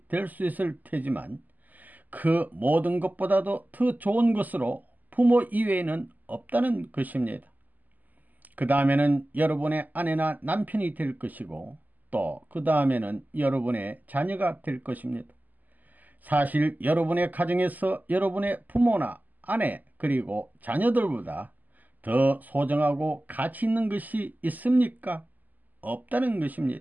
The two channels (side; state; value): left; late; 0.083 ms